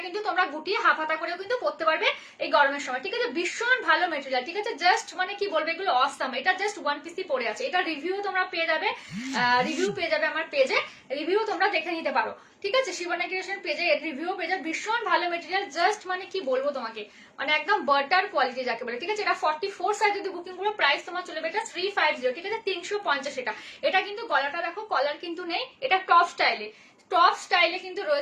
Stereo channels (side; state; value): both; identical; correlation 1.00